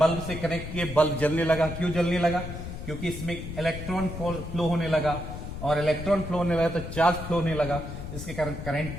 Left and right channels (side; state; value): left; noise; rumble, 8 dB below the sound